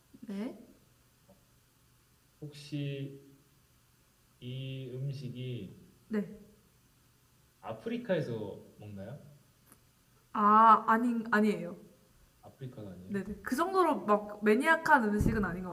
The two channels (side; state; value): both; identical; correlation 1.00